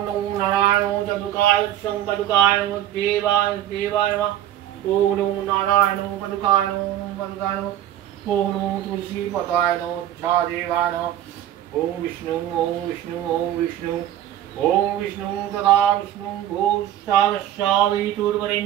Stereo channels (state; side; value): quieter; left; 12.1 dB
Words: नमो नारायण चतुकाय संकटुकाय देवाय देवाय ओम नमो नारायण पदुकाय पदुकाय ओम नमो तुलसी पताय झा देवाय ओम विष्णु ओम विष्णु ओम विष्णु ओम विष्णु तदा विष्णु